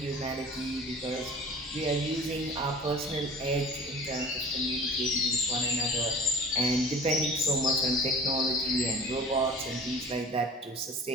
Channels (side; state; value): both; normal; correlation 0.42